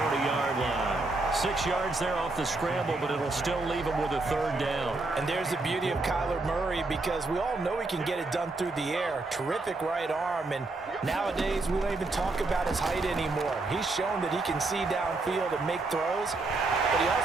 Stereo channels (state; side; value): quieter; left; 3.3 dB